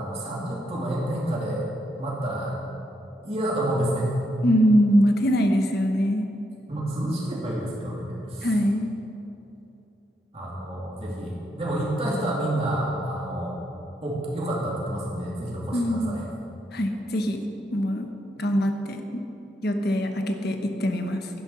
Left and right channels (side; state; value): both; normal; correlation 0.80